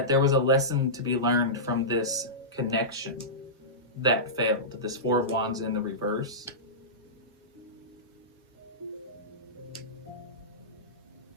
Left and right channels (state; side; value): normal; both; correlation -0.17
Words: there was a lesson to be learned from this connection that failed. This Four of Wands in the reverse.